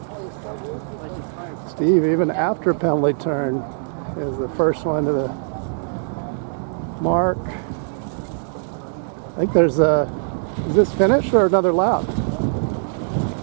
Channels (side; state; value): left; silent; 64 dB below the other